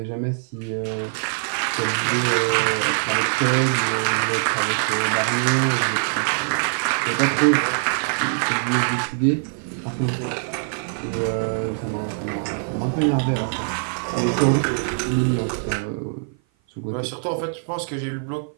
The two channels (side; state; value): left; silent; 55 dB below the other